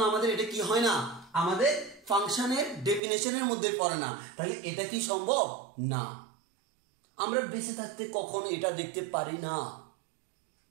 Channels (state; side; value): drops out; left; at 3.0 s